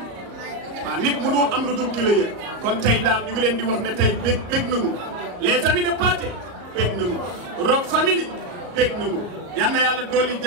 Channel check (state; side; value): late; left; 36 ms